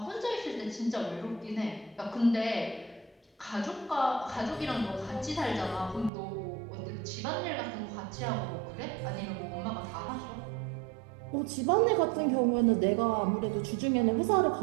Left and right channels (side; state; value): left; drops out; at 6.1 s